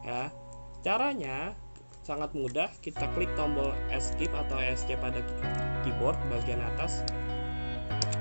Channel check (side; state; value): both; inverted; correlation -1.00